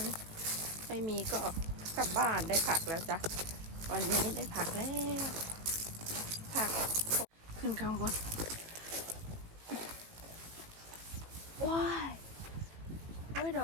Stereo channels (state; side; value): late; left; 18 ms